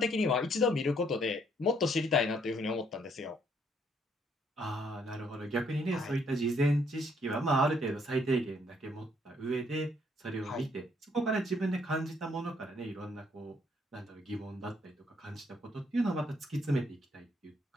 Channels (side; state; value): both; normal; correlation 0.68